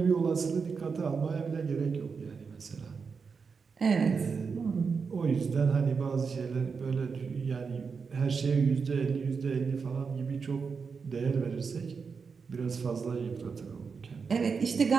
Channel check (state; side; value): quieter; left; 5.4 dB